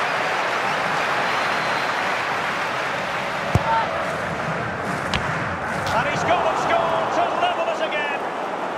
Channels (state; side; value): identical; both; correlation 1.00